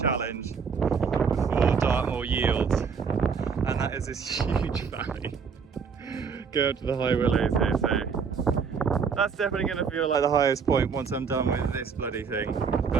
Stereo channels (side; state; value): left; quieter; 6.0 dB